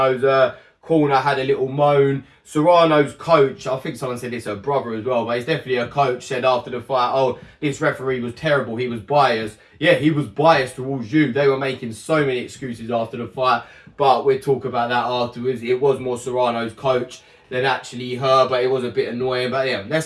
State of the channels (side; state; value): both; identical; correlation 1.00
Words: corner had a little moan. Serrano's coach, I think someone said it's her brother as well, but it's definitely her coach, said after the fight, oh, this referee was terrible, he was biased. Yeah, he was biased towards you. They were making so many excuses after the fight, but we'll talk about that afterwards. It was more Serrano's coach than actually her, but it was a bit annoying. But yeah,